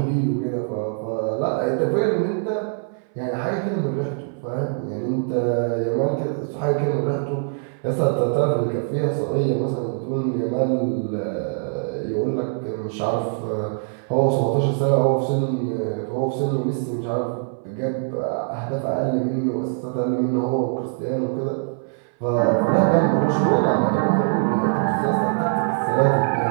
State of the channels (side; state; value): left; silent; 61 dB below the other